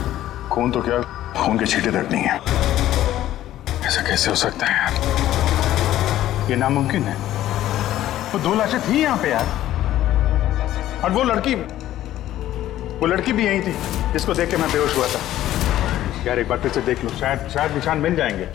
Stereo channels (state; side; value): quieter; right; 13.4 dB